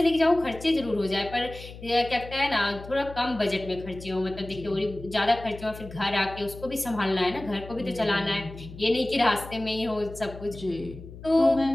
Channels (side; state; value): left; noise; hum, 15 dB below the sound